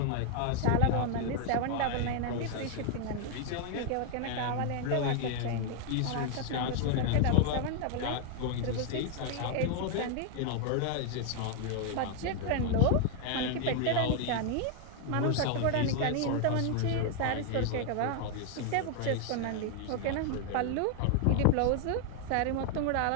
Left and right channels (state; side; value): different; both; correlation 0.00